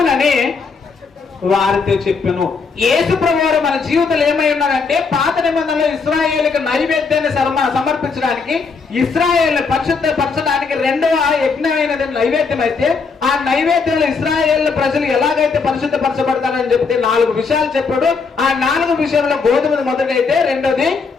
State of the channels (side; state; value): right; quieter; 4.9 dB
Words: వారితో చెప్పాను. యేసు ప్రభువారు మన జీవితంలో ఏమై ఉన్నారంటే పాత నిబంధనలో ఇశ్రాయేలుకి నైవేద్యాన్ని సమర్పించడానికి, ఇశ్రాయేల్ పరిశుద్ధపరచడానికి రెండవ యజ్ఞమైనది నైవేద్యం అయితే, ఆ నైవేద్యంలో ఇశ్రాయేల్ ప్రజలు ఎలాగైతే పరిశుద్ధపరచబడతారని చెప్తే 4 విషయాలు చెప్పాడు. ఆ 4 విషయంలో గోధుమ మొదటైతే, రెండోది